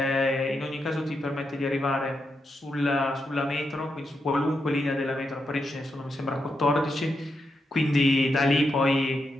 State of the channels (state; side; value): normal; both; correlation 0.84